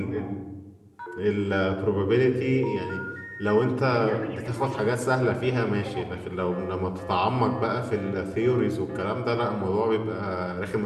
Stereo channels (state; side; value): identical; both; correlation 1.00